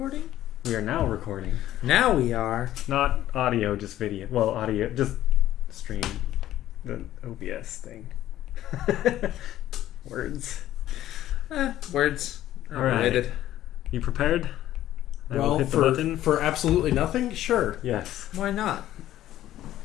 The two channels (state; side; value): quieter; right; 13.2 dB